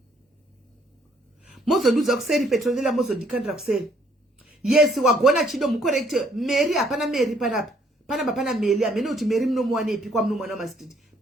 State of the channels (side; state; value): both; normal; correlation 0.65